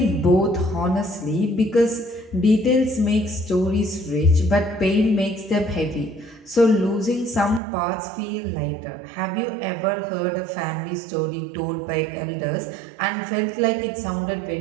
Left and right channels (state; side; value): drops out; left; at 7.6 s